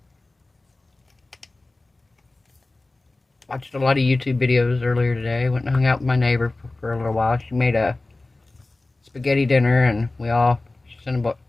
watched a lot of YouTube videos earlier today. Went and hung out with my neighbor for a little while. She made a spaghetti dinner, and we all, she sent a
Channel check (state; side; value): quieter; right; 3.0 dB